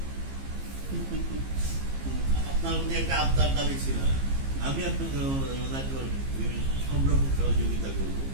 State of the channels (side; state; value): left; late; 15 ms